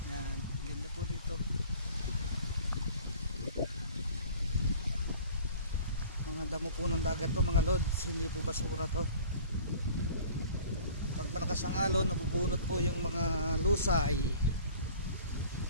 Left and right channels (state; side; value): inverted; both; correlation -0.46